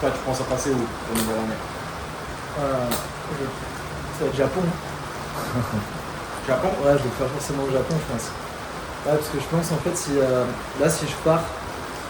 tu penses à passer où pour nouvelle année? Ça va être Japon. Japon? Ouais, je vais faire forcément le Japon, je pense. Ouais, parce que je pense en fait, si je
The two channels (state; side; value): identical; both; correlation 1.00